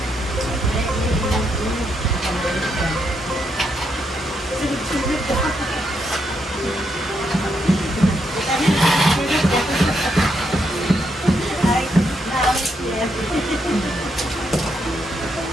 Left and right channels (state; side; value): normal; both; correlation 0.79